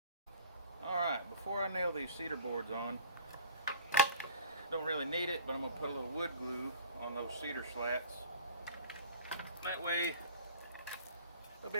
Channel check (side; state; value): both; inverted; correlation -0.43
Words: Alright, before I nail these cedar boards on, don't really need it, but I'm going to put a little wood glue on those cedar slats. That way, they'll